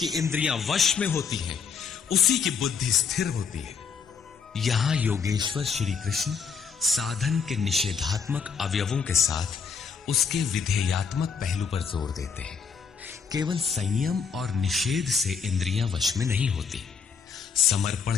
इंद्रियां वश में होती हैं, उसी की बुद्धि स्थिर होती है। यहां योगेश्वर श्री कृष्ण साधन के निषेधात्मक अवयवों के साथ उसके विधेयात्मक पहलू पर जोर देते हैं। केवल संयम और निषेध से इंद्रियां वश में नहीं होती। समर्पण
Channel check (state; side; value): quieter; right; 6.0 dB